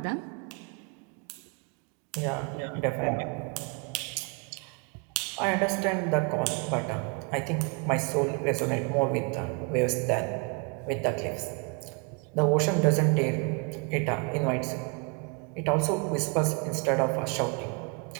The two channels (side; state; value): left; quieter; 33.8 dB